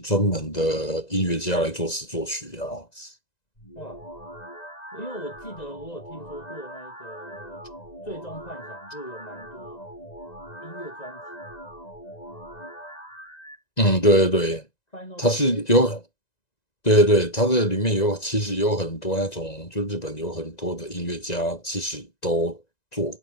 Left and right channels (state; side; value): late; right; 1.9 ms